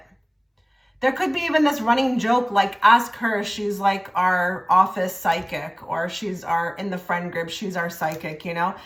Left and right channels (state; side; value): identical; both; correlation 1.00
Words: There could be even this running joke, like, ask her, she's like our office psychic, or she's in the friend group, she's our psychic, you know?